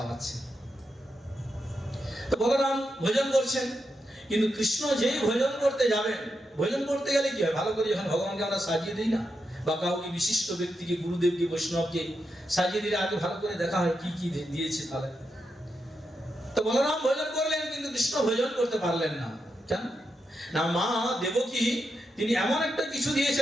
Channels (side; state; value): both; normal; correlation 0.85